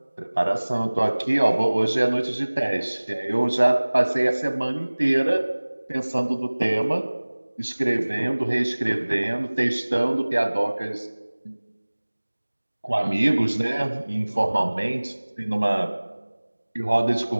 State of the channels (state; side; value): inverted; both; correlation -1.00